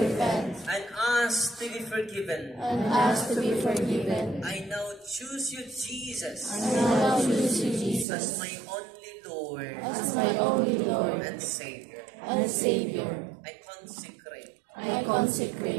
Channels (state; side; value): drops out; left; at 8.1 s